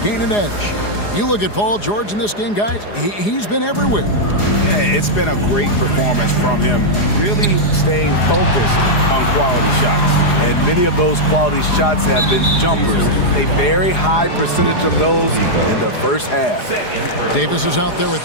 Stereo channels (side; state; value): right; late; 4.9 ms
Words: gain an edge. You look at Paul George in this game, guys, he's been everywhere. Yeah, it's been a great performance from him, really staying focused on quality shots. And many of those quality shots have been jumpers. A very high percentage of those in the 1st half. Davis is out there with